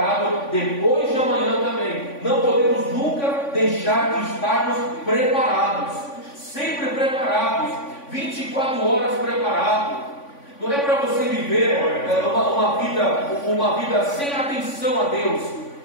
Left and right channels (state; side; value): late; right; 3.5 ms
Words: depois de amanhã também. Não podemos nunca deixar de estarmos preparados. Sempre preparados. 24 horas preparados. Não é para você viver uma vida sem atenção a Deus.